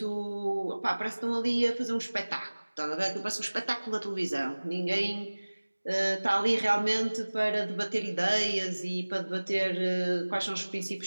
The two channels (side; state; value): both; inverted; correlation -1.00